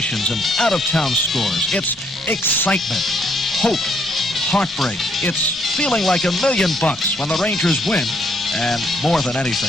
and out-of-town scores. It's excitement, hope, heartbreak. It's feeling like $1 million when the Rangers win. And more than anything,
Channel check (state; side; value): normal; both; correlation 0.70